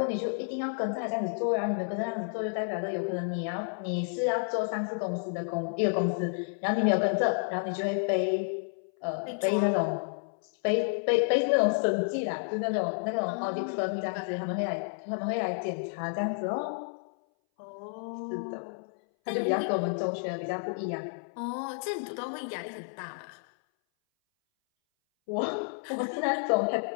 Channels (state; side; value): silent; right; 57 dB below the other